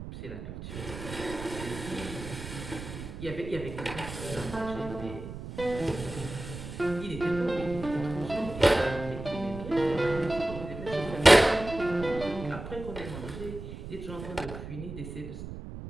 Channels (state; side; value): noise; right; rumble, 10 dB below the sound